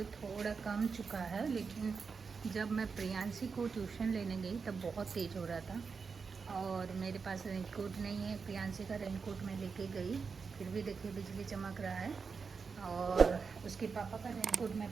थोड़ा कम चुका है, लेकिन जब मैं प्रियांशी को ट्यूशन लेने गई तब बहुत तेज़ हो रहा था और मेरे पास रेनकोट नहीं है। प्रियांशी का रेनकोट मैं लेके गई, फिर भी देखिए बिजली चमक रहा है और उसके पापा का रेनकोट मैं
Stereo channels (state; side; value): quieter; left; 5.3 dB